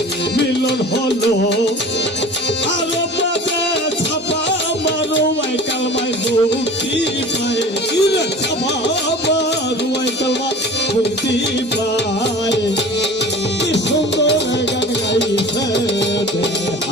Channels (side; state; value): both; normal; correlation 0.40